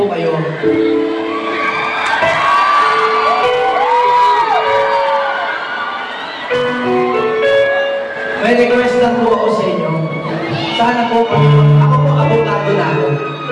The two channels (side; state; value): both; identical; correlation 1.00